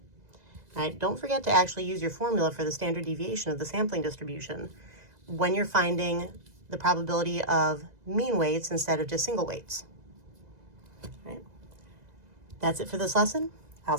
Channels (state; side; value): late; left; 2.0 ms